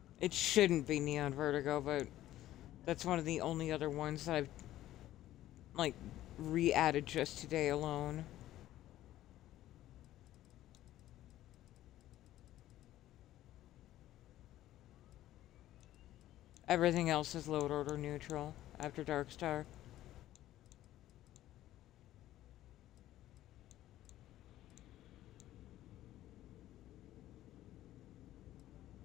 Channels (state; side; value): quieter; right; 14.0 dB